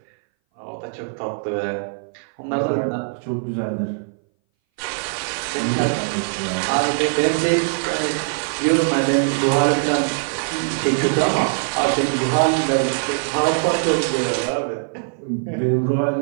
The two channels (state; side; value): silent; left; 60 dB below the other